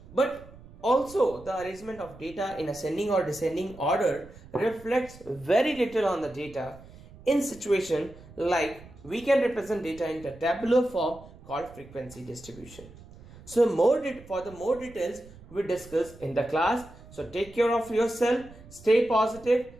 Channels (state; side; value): noise; right; rumble, 20 dB below the sound